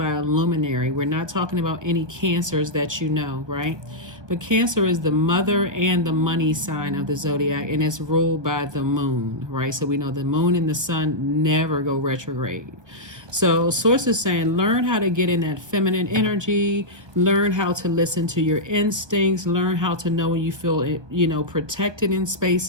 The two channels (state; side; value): late; left; 1.2 ms